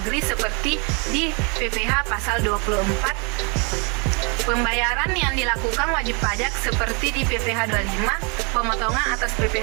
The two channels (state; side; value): quieter; left; 32.7 dB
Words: seperti di PPh pasal 24, pembayaran yang dilakukan wajib pajak seperti di PPh 25, pemotongan atas